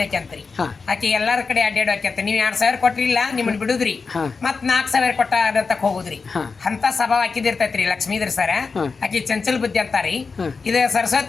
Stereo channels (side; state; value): right; quieter; 4.7 dB